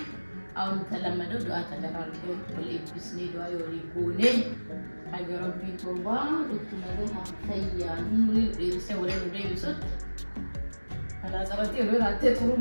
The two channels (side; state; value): both; inverted; correlation -1.00